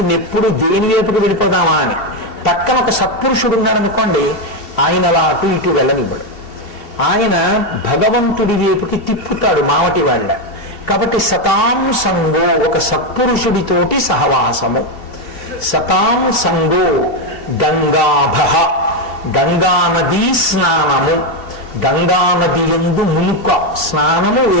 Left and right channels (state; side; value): late; right; 2.7 ms